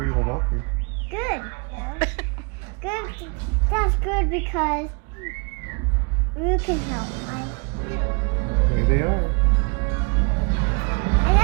Walker. Good. Good. That's good because Luke can help, right? There they are. I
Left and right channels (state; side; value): quieter; left; 33.1 dB